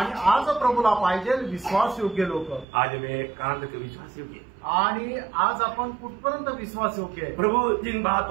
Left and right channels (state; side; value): drops out; left; at 2.7 s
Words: आज प्रभूला पाहिजे विश्वास योग्य लोक. आज मैं कहां तक विश्वास योग्य. आणि आज आपण कुठपर्यंत विश्वास योग्य आहे. प्रभु जिन